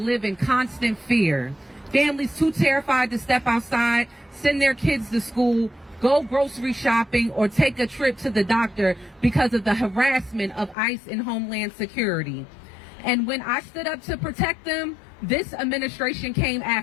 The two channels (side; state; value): right; drops out; at 10.8 s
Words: in constant fear. Families too terrified to step outside, send their kids to school, go grocery shopping, or take a trip to the doctor because of the harassment of ICE and Homeland Security. And when I stood up to protect them, this administration came